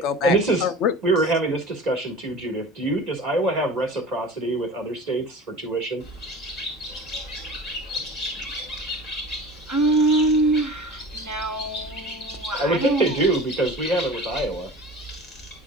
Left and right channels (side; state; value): both; normal; correlation 0.38